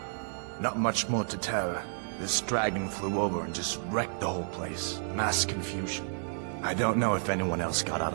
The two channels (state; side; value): silent; left; 57 dB below the other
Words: Not much more to tell. This dragon flew over and just wrecked the whole place. Mass confusion. I don't know if anyone else got out